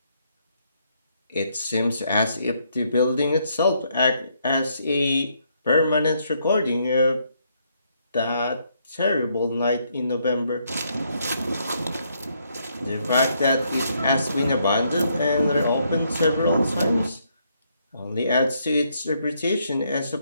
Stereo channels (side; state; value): both; inverted; correlation -0.73